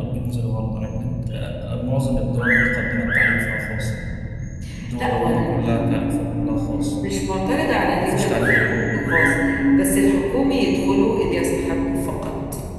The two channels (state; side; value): identical; both; correlation 1.00